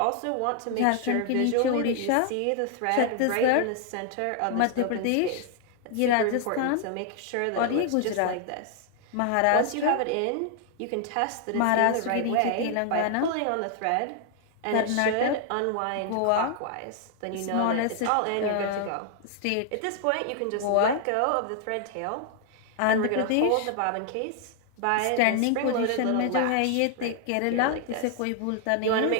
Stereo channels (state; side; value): different; both; correlation 0.00